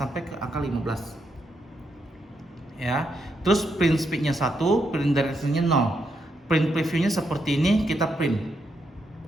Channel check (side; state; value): both; normal; correlation 0.80